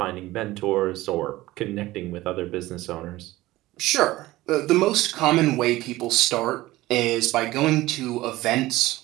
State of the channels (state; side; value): quieter; left; 17.7 dB